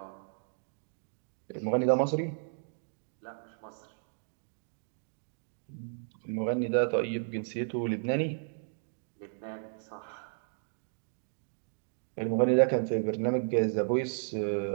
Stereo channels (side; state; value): left; silent; digital silence